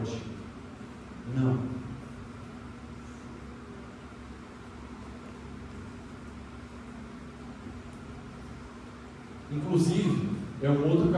Não. Inclusive, é um outro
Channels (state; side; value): identical; both; correlation 1.00